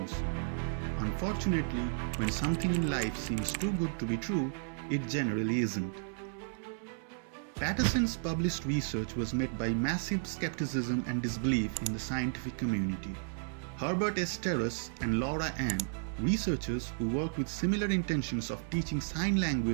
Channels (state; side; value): silent; left; 56 dB below the other